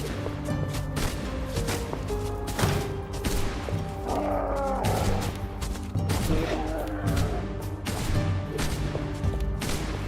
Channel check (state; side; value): identical; both; correlation 1.00